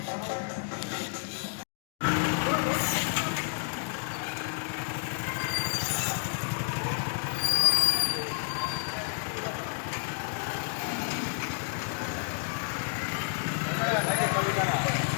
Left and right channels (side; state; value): right; silent; digital silence